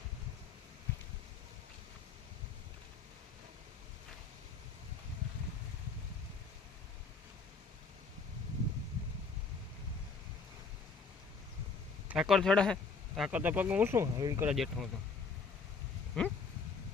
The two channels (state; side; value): quieter; right; 4.7 dB